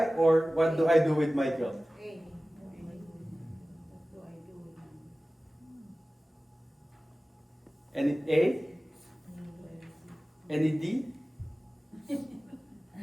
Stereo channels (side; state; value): both; normal; correlation 0.97